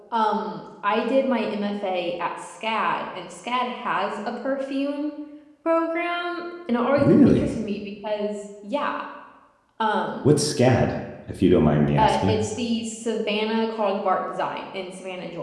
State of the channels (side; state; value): both; identical; correlation 1.00